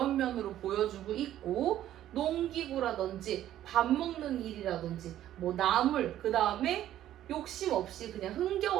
면으로 보여주고 있고, 농기구라든지 밥 먹는 일이라든지 뭐 나물, 그 다음에 욕심 없이 그냥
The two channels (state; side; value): quieter; left; 12.4 dB